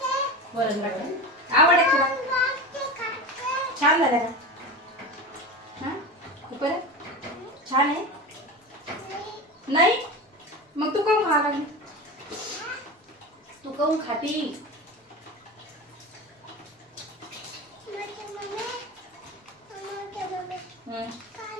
वरण बट्ट्या आवड आहे तुला? छान झालं का? हा खूप छान आहे. नाही मग तू काहून खा लागली? तू काहून खाती?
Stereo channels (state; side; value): normal; both; correlation 0.26